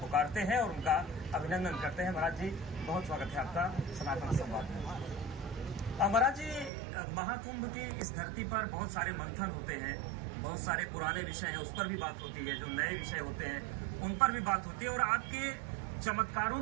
हैं और उनका अभिनंदन करते हैं। महाराज जी, बहुत स्वागत है आपका सनातन संवाद में। महाराज जी, महाकुंभ की इस धरती पर बहुत सारे मंथन होते हैं, बहुत सारे पुराने विषय हैं, उस पर भी बात होती है, जो नए विषय होते हैं उन पर भी बात होती है, और आपके चमत्कारों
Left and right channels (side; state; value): left; drops out; at 6.7 s